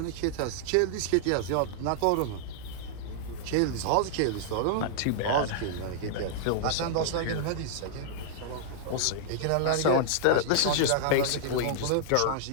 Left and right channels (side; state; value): both; different; correlation -0.01